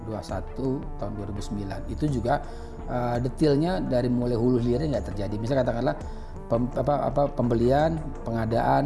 21 tahun 2009. Itu juga detailnya dari mulai hulu hilirnya nggak terjadi. Misalnya katakanlah pembelian,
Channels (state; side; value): identical; both; correlation 1.00